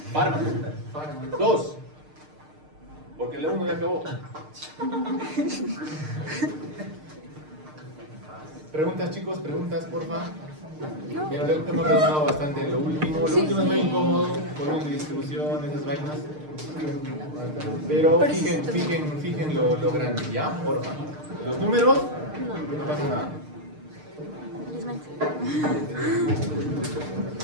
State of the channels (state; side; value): late; left; 6.6 ms